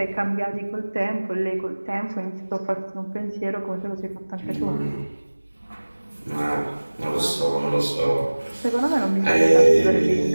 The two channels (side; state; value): both; inverted; correlation -1.00